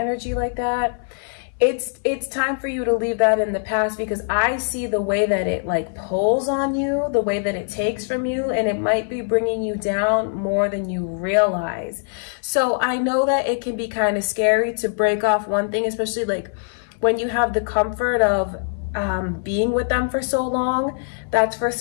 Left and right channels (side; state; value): right; silent; 64 dB below the other